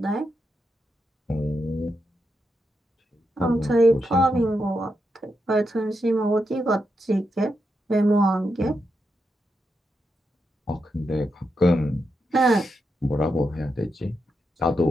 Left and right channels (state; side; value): normal; both; correlation 0.85